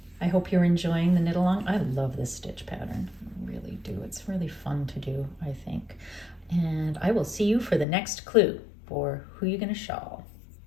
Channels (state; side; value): drops out; right; at 7.9 s